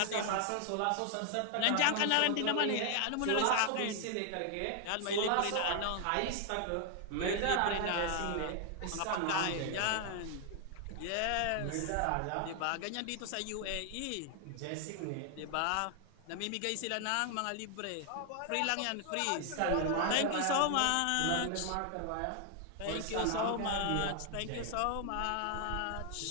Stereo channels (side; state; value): both; different; correlation 0.00